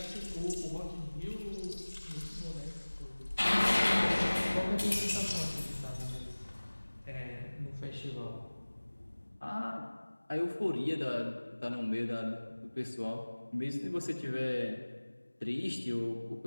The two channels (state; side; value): inverted; both; correlation -1.00